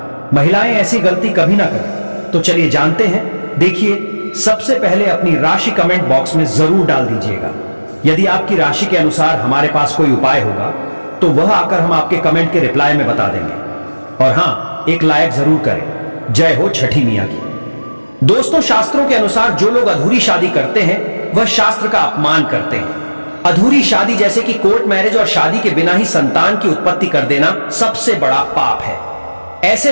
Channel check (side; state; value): both; inverted; correlation -1.00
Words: महिलाएं ऐसी गलती कभी ना करें। तो चलिए जानते हैं। देखिए, सबसे पहले अपनी राशि कमेंट बॉक्स में जरूर डाल दीजिएगा। यदि आपकी राशि के अनुसार हमारे पास कोई उपाय होगा तो वह आकर हम आपके कमेंट के रिप्लाई में बता देंगे। और हां, एक लाइक जरूर करें। जय हो छठी मैया की। दोस्तों, शास्त्रों के अनुसार जो लोग अधूरी शादी करते हैं वह शास्त्र का अपमान करते हैं। अधूरी शादी जैसे कि कोर्ट मैरिज और शादी के बिना ही संतान की उत्पत्ति कर देना सबसे बड़ा पाप है। ऐसे